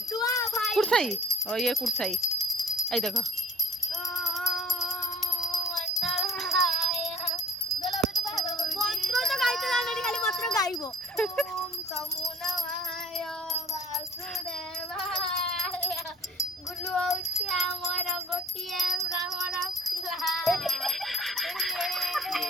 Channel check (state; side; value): normal; both; correlation 0.52